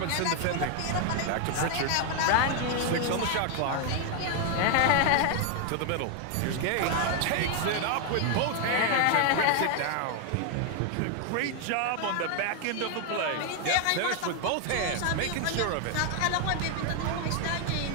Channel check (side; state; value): both; different; correlation 0.00